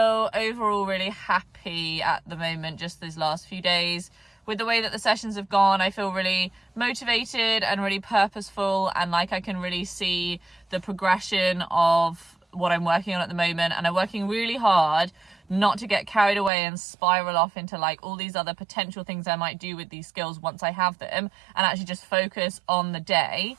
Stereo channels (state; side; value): drops out; left; at 16.5 s